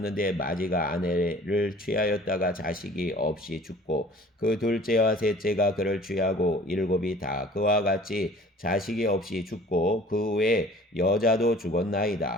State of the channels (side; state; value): both; normal; correlation 0.49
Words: 마지가 아내를 취하였다가 자식이 없이 죽고 그 둘째와 셋째가 그를 취하고 7이 다 그와 같이 자식이 없이 죽고 그 후에 여자도